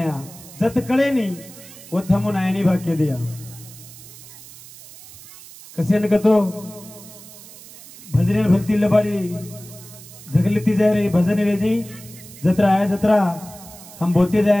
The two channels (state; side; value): noise; right; hiss, 18 dB below the sound